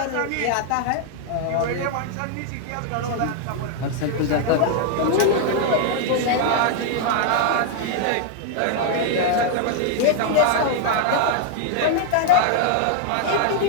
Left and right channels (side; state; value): both; different; correlation 0.00